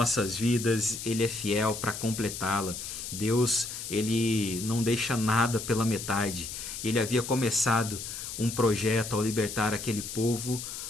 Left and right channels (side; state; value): left; noise; hiss, 8 dB below the sound